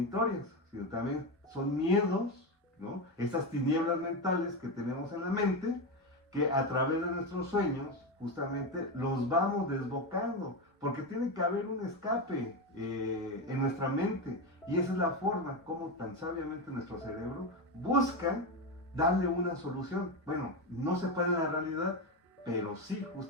sino también son miedos, ¿no? Estas tinieblas mentales que tenemos en la mente, que a través de nuestros sueños justamente los vamos desbocando porque tiene que haber un escape en nuestra mente, y esa es la forma como tan sabiamente nuestro cerebro busca darle una solución. Bueno, no se puede en la realidad, pero sí,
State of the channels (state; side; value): normal; both; correlation 0.14